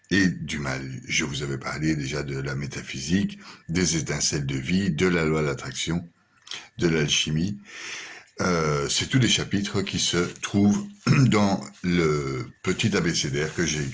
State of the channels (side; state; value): both; identical; correlation 1.00